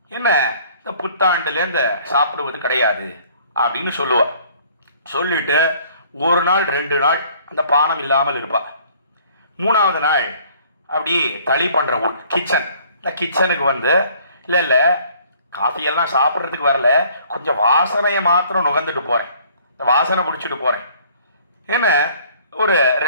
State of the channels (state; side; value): inverted; both; correlation -0.56